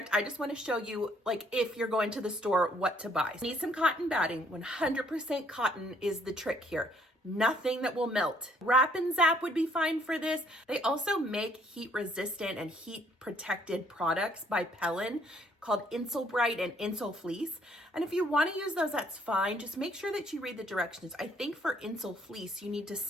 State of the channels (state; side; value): normal; both; correlation 0.65